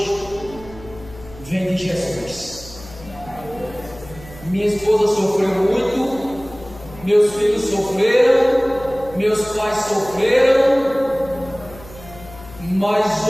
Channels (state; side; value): noise; left; hum, 18 dB below the sound